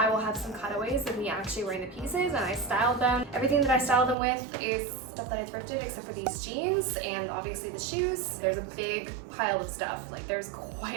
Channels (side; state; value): left; drops out; at 4.2 s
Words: will have some cutaways of me actually wearing the pieces, and I styled them. Everything that I styled them with is stuff that I thrifted except for these jeans and obviously the shoes. There's a big pile of stuff. Like, there's